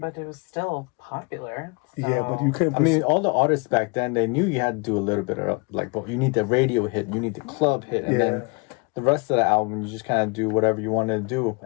it was still popular. yeah, so- but you couldn't. I mean, all the artists back then, they knew you had to do a little bit of like, but you need the radio hit, you need the club hit, and Yeah. then the rest of the album, you just kind of do whatever you wanted to do,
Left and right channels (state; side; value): quieter; right; 32.0 dB